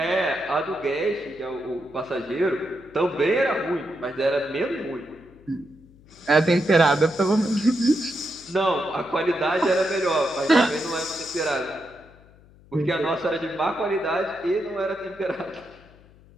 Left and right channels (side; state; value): left; noise; hum, 26 dB below the sound